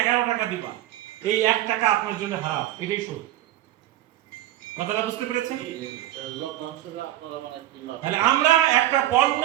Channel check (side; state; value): left; quieter; 13.7 dB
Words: 11 টাকা দিবা, এই 1 টাকা আপনার জন্য হারাম, এটাই সুদ। কথাটা বুঝতে পেরেছেন? তাহলে আমরা একটা পণ্য